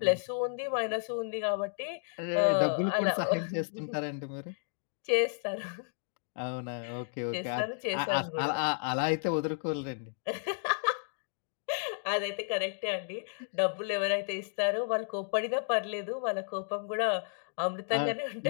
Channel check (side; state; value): right; silent; digital silence